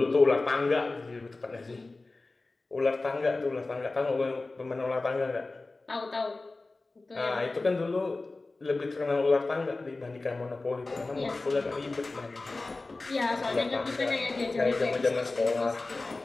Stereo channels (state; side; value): quieter; right; 3.3 dB